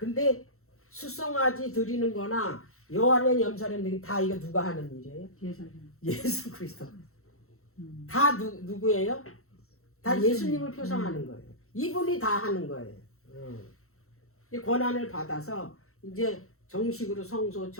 수송아지 드리는 거나 여호와는 염소는 다 이거 누가 하는 일이에요? 예수 그리스도. 다 누구예요? 다 예수님을 표상하는 거예요. 이분이 다 하는 거예요. 이 권한을 받아서 이제 정식으로 성소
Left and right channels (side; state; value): right; late; 0.63 ms